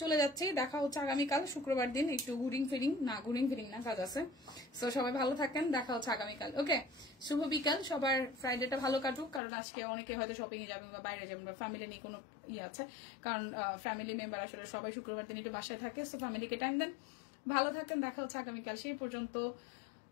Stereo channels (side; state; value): right; drops out; at 9.4 s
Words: চলে যাচ্ছে, দেখা হচ্ছে আগামীকাল শুক্রবার দিন। একটু ঘুরিং ফিরিং না, কাজ আছে। সো সবাই ভালো থাকেন, দেখা হচ্ছে আগামীকাল। ওকে, শুভ বিকাল সবার। ফ্রাইডেটা ভালো কাটুক, কারণ আজকে অনেকে হয়তো শপিং এ যাবেন বা বাইরে যাবেন বা ফ্যামিলি নিয়ে কোনো আছে, কারণ ফ্যামিলি মেম্বার আসলে সবাই শুক্রবার দিন একটু বাসায় থাকে। সো ফ্যামিলিকে টাইম দেন, ভালো থাকেন, দেখা হচ্ছে আগামীকাল। সেই পর্যন্ত